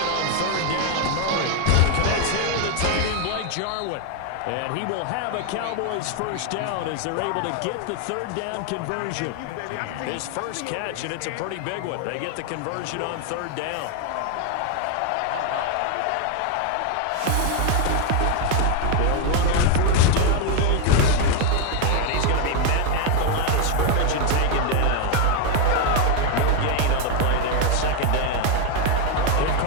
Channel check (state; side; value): different; both; correlation 0.01